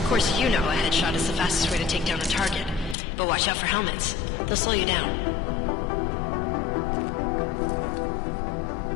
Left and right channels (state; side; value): drops out; right; at 3.0 s